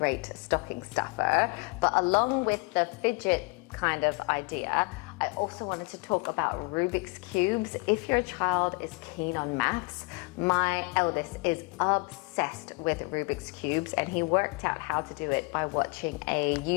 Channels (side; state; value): right; quieter; 29.5 dB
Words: stocking stuffer. But along with the Fidget kind of idea, I also wanted to talk about Rubik's Cubes. If your child is keen on maths, my eldest is obsessed with Rubik's Cubes, and he worked out how to do it by watching a